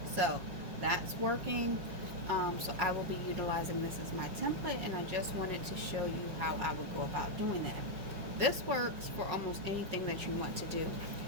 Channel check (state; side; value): late; left; 5.7 ms